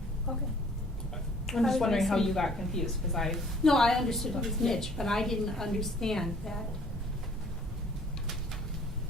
okay. I'm I just was wondering how missing- you got confused, because I, No, I understood it was Mitch, but I didn't understand that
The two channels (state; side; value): normal; both; correlation 0.57